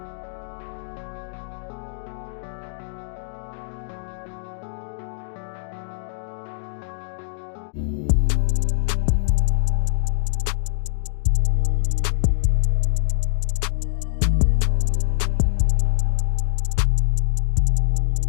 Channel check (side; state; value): right; silent; digital silence